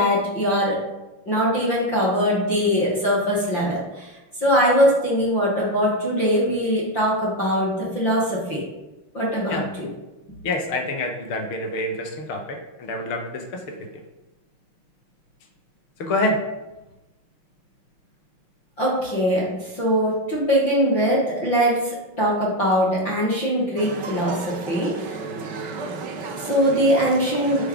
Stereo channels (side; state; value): right; late; 5.8 ms